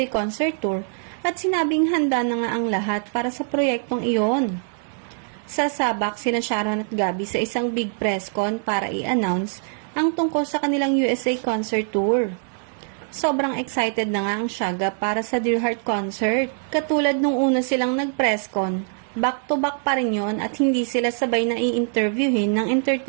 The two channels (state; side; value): silent; left; 63 dB below the other